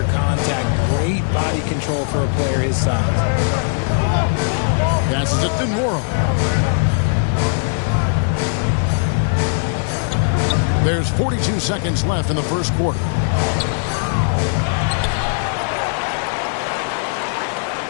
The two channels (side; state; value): right; silent; 67 dB below the other